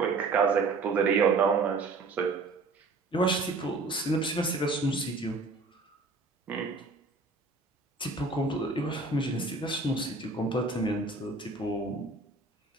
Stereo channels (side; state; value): left; quieter; 3.6 dB